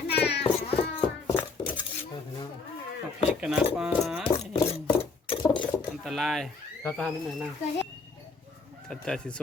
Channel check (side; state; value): right; quieter; 4.3 dB